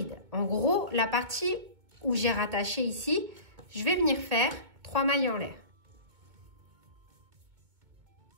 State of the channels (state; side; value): late; left; 2.2 ms